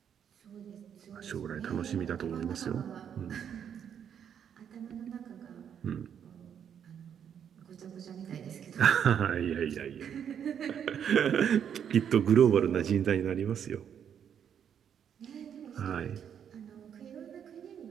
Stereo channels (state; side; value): quieter; left; 8.5 dB